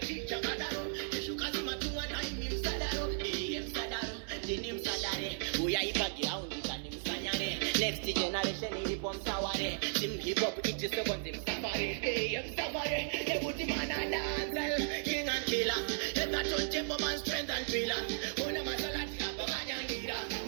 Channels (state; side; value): silent; left; 54 dB below the other